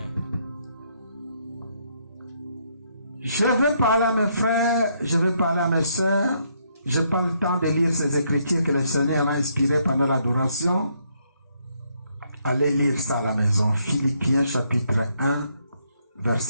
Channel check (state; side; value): inverted; both; correlation -0.73